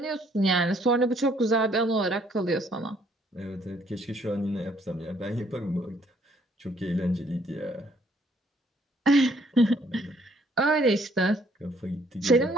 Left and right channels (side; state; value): both; normal; correlation 0.65